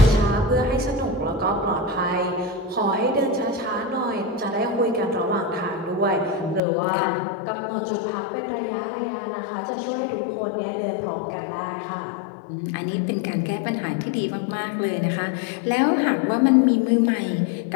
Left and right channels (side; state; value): right; drops out; at 6.6 s